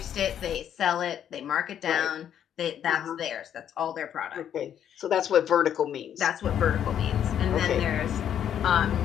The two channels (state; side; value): quieter; right; 9.6 dB